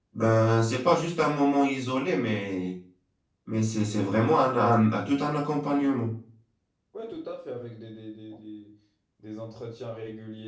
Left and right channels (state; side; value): identical; both; correlation 1.00